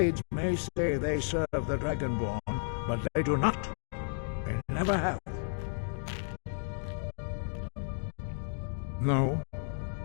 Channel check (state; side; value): silent; right; digital silence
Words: may say they serve the Dragonborn, but they do not. They never have. No,